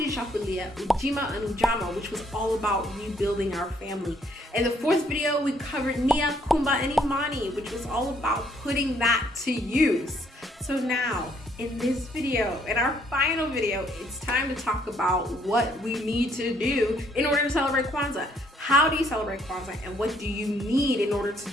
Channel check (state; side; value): normal; both; correlation 0.67